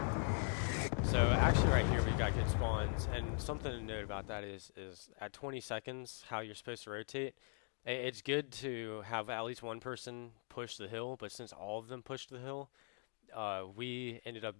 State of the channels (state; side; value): silent; right; 50 dB below the other